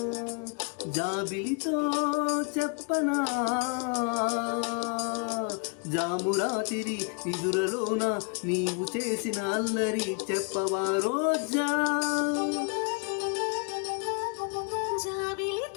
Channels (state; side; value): quieter; right; 36.9 dB